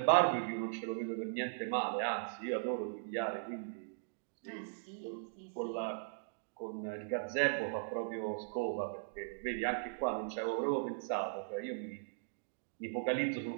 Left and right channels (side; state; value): left; silent; digital silence